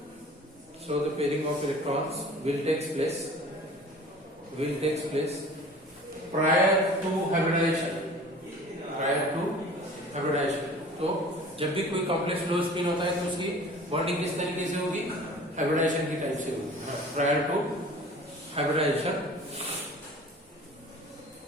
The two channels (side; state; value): both; normal; correlation 0.44